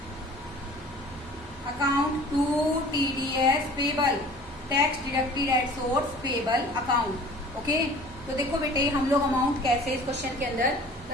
account to TDS payable, tax deducted at source payable account. Okay, तो देखो बेटे हम लोग अमाउंट कैसे इस क्वेश्चन के अंदर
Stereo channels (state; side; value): normal; both; correlation 0.46